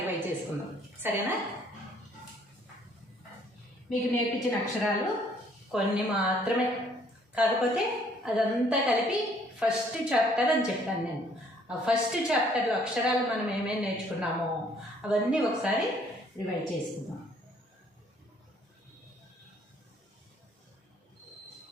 చేసుకుందాం, సరేనా? మీకు నేర్పించిన అక్షరాలు కొన్ని మాత్రమే, కాకపోతే అదంతా కలిపి ఫస్ట్ చాప్టర్ అని చెప్పాను నేను. ఆ ఫస్ట్ చాప్టర్ అక్షరాలు మనం ఏమేమి నేర్చుకున్నామో అవన్నీ ఒకసారి రివైజ్ చేసుకుందాం.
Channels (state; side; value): normal; both; correlation 0.62